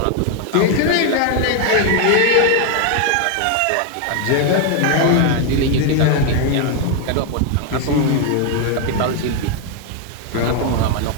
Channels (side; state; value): both; different; correlation 0.01